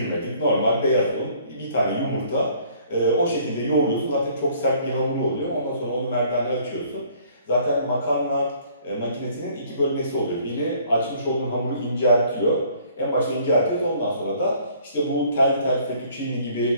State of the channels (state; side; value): inverted; both; correlation -0.59